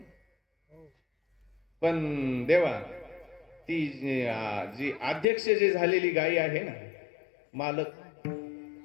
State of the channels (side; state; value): right; drops out; at 5.2 s